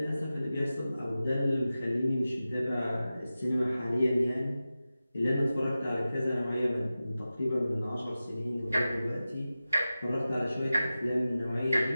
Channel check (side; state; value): both; inverted; correlation -0.94